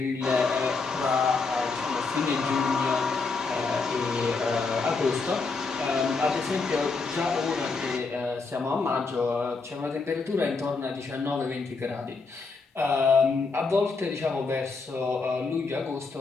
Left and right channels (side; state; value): right; quieter; 4.3 dB